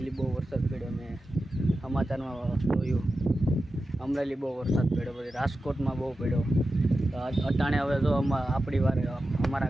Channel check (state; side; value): normal; both; correlation 0.92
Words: બહુ વરસાદ પડ્યો, મેં સમાચારમાં જોયું। અમરેલી બહુ વરસાદ પડ્યો, પછી રાજકોટમાં બહુ પડ્યો। તો અટાણે હવે જો આપણી વારે